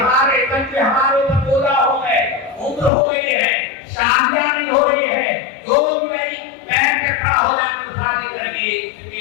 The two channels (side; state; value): right; drops out; at 2.9 s